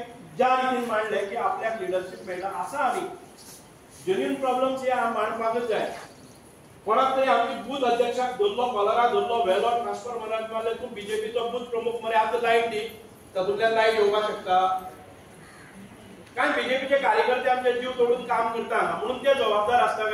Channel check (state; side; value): identical; both; correlation 1.00